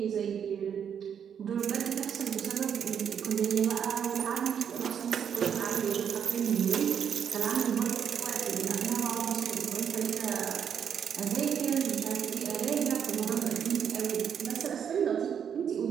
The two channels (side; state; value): left; quieter; 8.0 dB